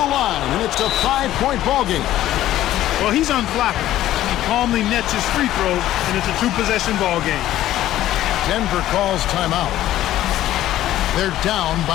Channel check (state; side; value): quieter; right; 13.7 dB